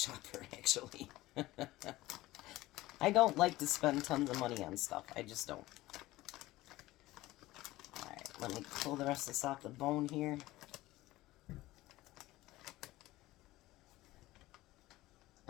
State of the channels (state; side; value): quieter; right; 17.7 dB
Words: actually. I don't like to spend tons of money on stuff. I just don't. Alright, let me pull the rest of this off the bone here.